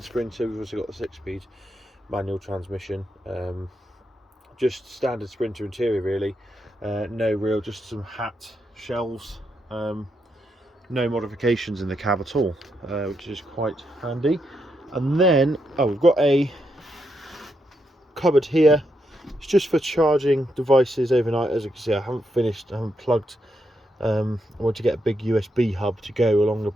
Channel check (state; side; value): normal; both; correlation 0.81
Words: Sprinter. We've also got the 6-speed manual transmission. Just standard Sprinter interior really. No real, just some hat shelves. No modifications in the cab at all, which is quite handy. And then, we've got a cupboard here. It's just for charging devices overnight. As you can see, I haven't plugged. I want to get a big USB hub to go along the